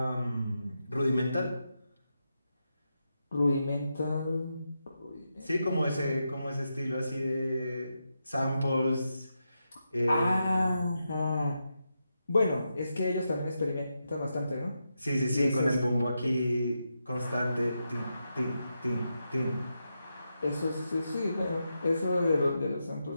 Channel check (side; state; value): both; inverted; correlation -0.87